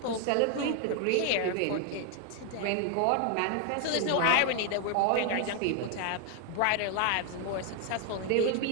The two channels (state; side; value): different; both; correlation 0.01